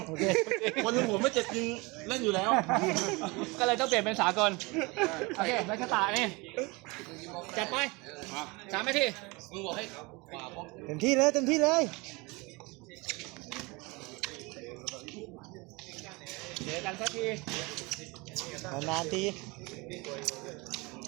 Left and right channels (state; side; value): quieter; left; 25.7 dB